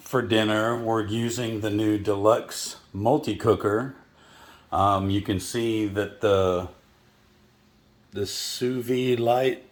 for dinner, we're using the new Deluxe multi-cooker. You can see that the Sous Vide light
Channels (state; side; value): identical; both; correlation 1.00